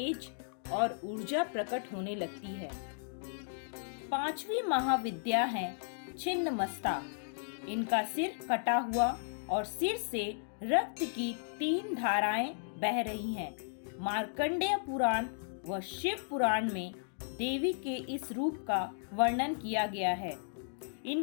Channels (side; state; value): right; silent; digital silence